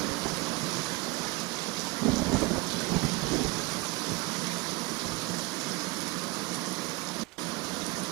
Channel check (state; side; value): quieter; left; 24.1 dB